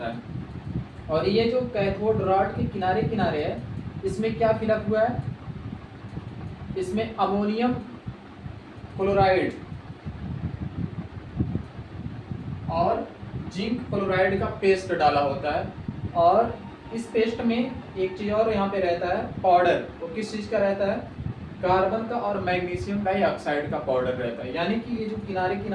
है। और ये जो कैथोड रॉड के किनारे किनारे है, इसमें क्या फिलअप हुआ है, इसमें अमोनियम क्लोराइड और जिंक क्लोराइड का पेस्ट डाला होता है, और इस पेस्ट में एक चीज और यहाँ पे रहता है पाउडर। वो किस चीज का रहता है? कार्बन का और मैग्नीशियम डाइऑक्साइड का पाउडर रहता है। यानी कि ये जो किनारे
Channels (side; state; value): both; identical; correlation 1.00